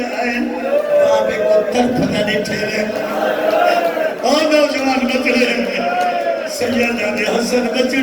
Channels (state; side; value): identical; both; correlation 1.00